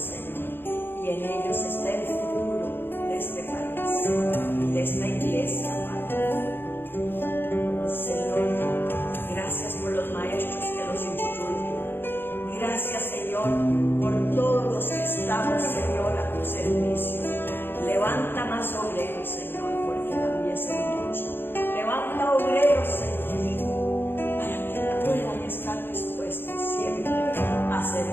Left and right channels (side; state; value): right; late; 0.10 ms